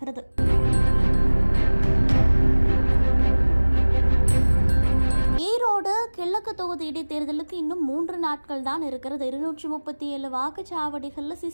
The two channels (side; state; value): both; inverted; correlation -1.00